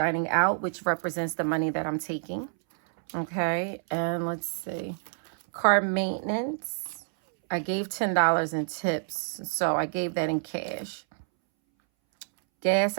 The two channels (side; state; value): left; silent; 59 dB below the other